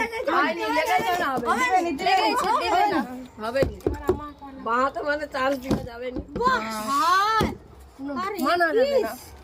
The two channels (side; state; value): both; identical; correlation 1.00